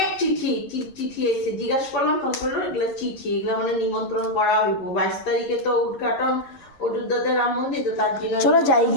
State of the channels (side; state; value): right; late; 11 ms